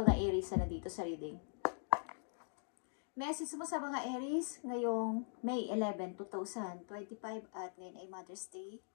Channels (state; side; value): silent; right; digital silence